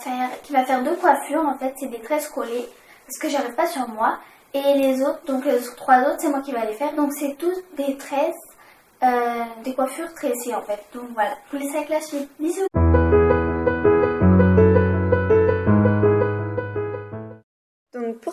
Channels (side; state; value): both; identical; correlation 1.00